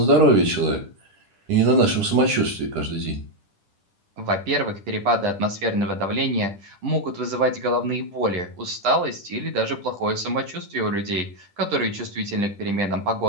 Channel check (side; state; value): left; late; 10 ms